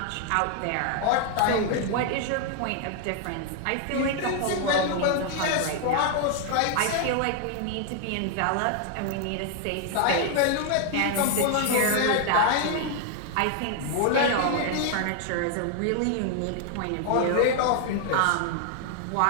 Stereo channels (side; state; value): both; different; correlation 0.00